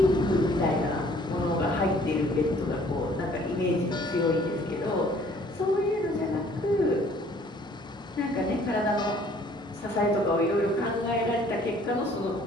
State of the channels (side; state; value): both; normal; correlation 0.57